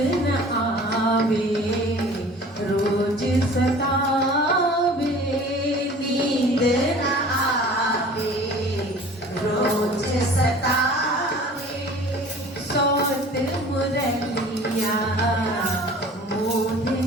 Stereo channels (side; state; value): both; normal; correlation 0.45